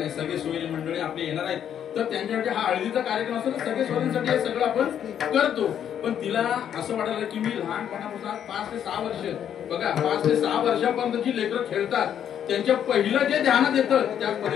सगळे सोयी मंडळी आपले येणार आहेत, तर त्यांच्यासाठी हा हळदीचा कार्यक्रम असतो, तर सगळे सोयींसाठी हे सगळं आपण करतो. पण तिला असं वाटायला की मी लहानपणापासून 5 ते 6 वर्ष, बघा 5 ते 6 वर्षापर्यंत जी लेकरं खेळतात त्यांच्या पहिलं जे ध्यानात येतं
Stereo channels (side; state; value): right; quieter; 9.4 dB